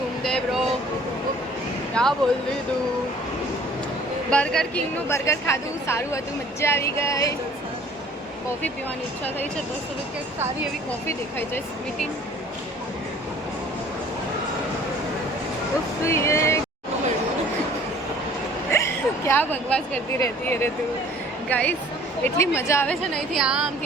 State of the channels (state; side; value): normal; both; correlation 0.52